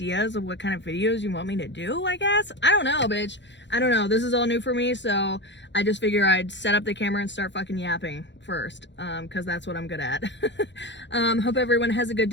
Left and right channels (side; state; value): right; late; 0.52 ms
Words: of what kind of videos you want me to do, I guess. I don't know, bitch. I don't know. This is all new for me. So I just figure I'd set up the camera and start fucking yapping first. Cause that's what I'm good at. Hope everyone has a good